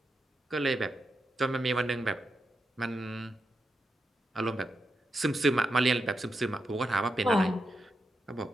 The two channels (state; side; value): normal; both; correlation 0.85